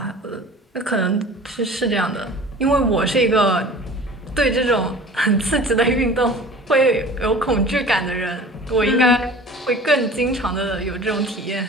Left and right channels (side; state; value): both; normal; correlation 0.42